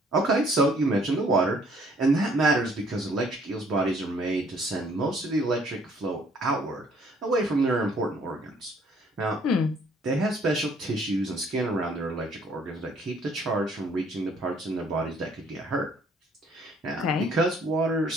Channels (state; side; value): normal; both; correlation 0.61